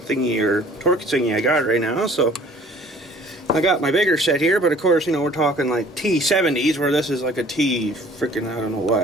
or torque thingy I got right now, so I got my bigger set here, but of course, you know, we're talking like T70s, where this is like a T freaking I don't know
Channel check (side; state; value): both; normal; correlation 0.52